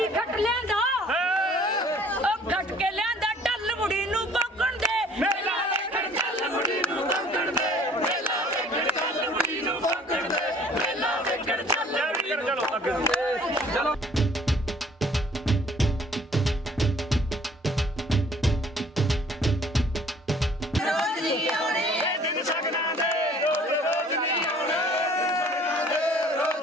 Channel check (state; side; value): normal; both; correlation 0.55